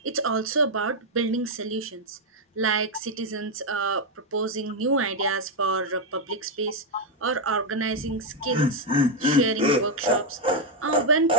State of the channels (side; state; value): both; normal; correlation 0.00